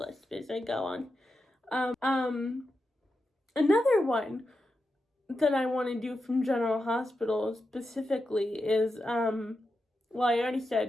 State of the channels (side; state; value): both; normal; correlation 0.88